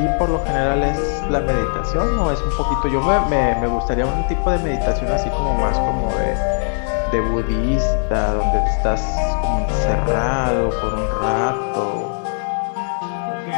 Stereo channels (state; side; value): silent; right; digital silence